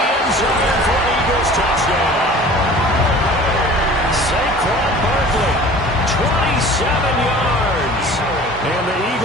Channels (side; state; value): both; normal; correlation 0.44